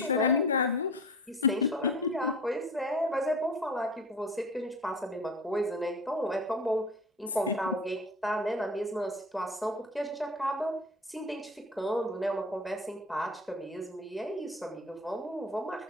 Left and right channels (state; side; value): normal; both; correlation 0.37